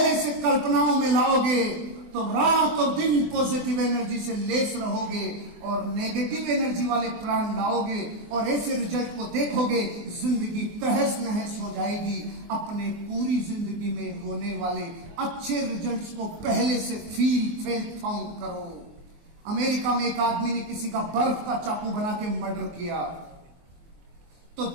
से कल्पनाओं में लाओगे तो रात और दिन पॉजिटिव एनर्जी से लेस रहोगे, और नेगेटिव एनर्जी वाले प्राण लाओगे और ऐसे रिजल्ट को देखोगे, जिंदगी तहस नहस हो जाएगी। अपने पूरी जिंदगी में होने वाले अच्छे रिजल्ट्स को पहले से फील फाउंड करो। अमेरिका में एक आदमी ने किसी का बर्फ का चाकू बना के मर्डर किया, तो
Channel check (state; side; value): late; left; 24 ms